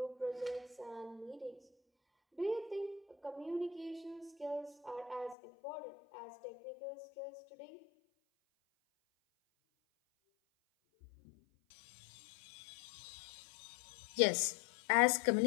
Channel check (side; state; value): right; drops out; at 5.4 s